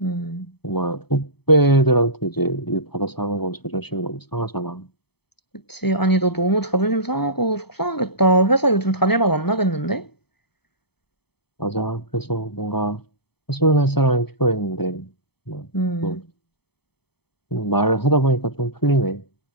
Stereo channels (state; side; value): late; right; 0.97 ms